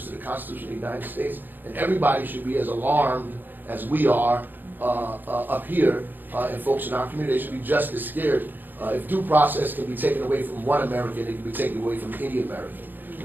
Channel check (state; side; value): late; left; 0.090 ms